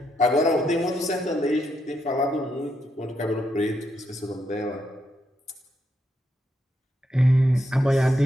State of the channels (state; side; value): normal; both; correlation 0.80